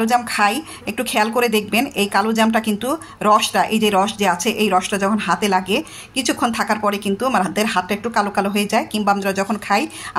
জাম খাই, একটু খেয়াল করে দেখবেন এই কালো জামটা কিন্তু রসটা, এই যে রস যে আছে, এই রসটা যখন হাতে লাগে কিছুক্ষণ থাকার পরে কিন্তু আমাদের হাতটা একটু কালো কালো হয়ে যায়, কিংবা আমরা যখন খাই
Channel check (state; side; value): identical; both; correlation 1.00